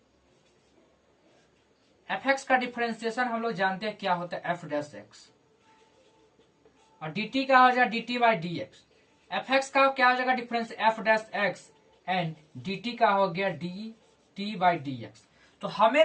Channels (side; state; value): both; identical; correlation 1.00